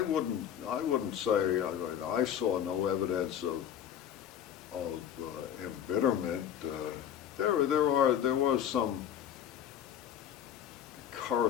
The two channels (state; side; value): quieter; right; 9.7 dB